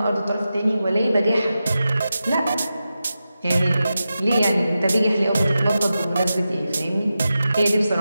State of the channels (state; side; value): inverted; both; correlation -0.91